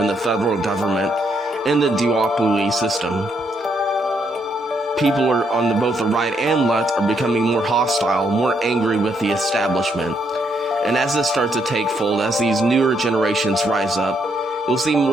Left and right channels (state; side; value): normal; both; correlation 0.75